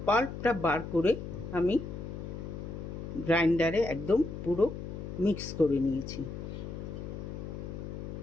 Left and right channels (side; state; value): left; noise; hum, 7 dB below the sound